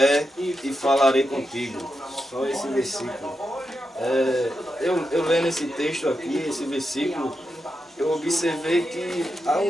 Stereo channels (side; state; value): both; normal; correlation 0.87